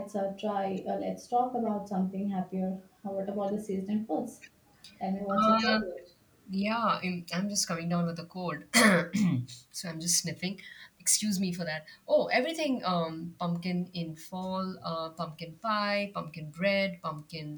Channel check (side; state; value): both; identical; correlation 1.00